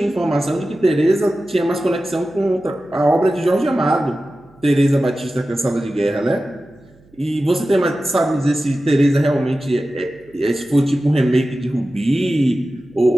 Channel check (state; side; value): noise; right; hum, 30 dB below the sound